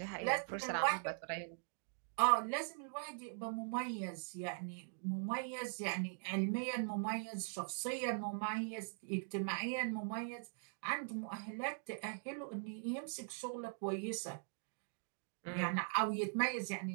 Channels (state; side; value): silent; left; digital silence